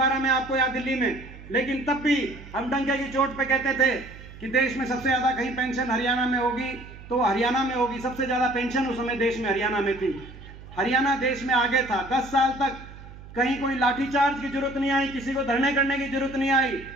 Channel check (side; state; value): right; noise; hum, 17 dB below the sound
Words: में, आपको याद, दिल्ली में, लेकिन तब भी हम डंके की चोट पे कहते थे कि देश में सबसे ज्यादा कहीं पेंशन हरियाणा में होगी तो हरियाणा में होगी। सबसे ज्यादा पेंशन उस समय देश में हरियाणा में थी। हरियाणा देश में आगे था। 10 साल तक कहीं कोई लाठीचार्ज की जरूरत नहीं आई, किसी को धरने करने की जरूरत नहीं आई,